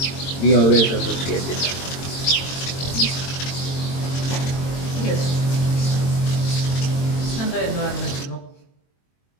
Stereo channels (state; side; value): late; right; 22 ms